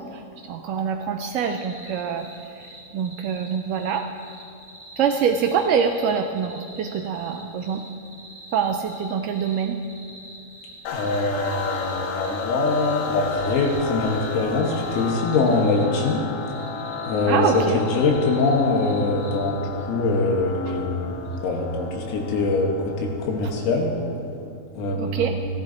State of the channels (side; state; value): right; late; 3.8 ms